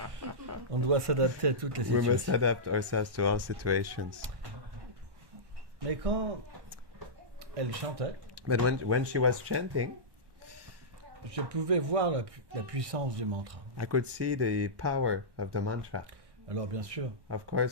On doit s'adapter à toutes les We must situations. adapt ourselves to all situations. Mais quand elle chantait, But when she was chanting, je pouvais voir la puissance du mantra. I could see the power of the mantra. Alors bien sûr, Of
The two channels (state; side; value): late; left; 1.1 ms